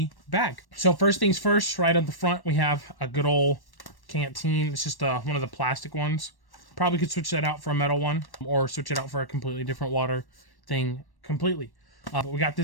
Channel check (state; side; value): late; right; 1.1 ms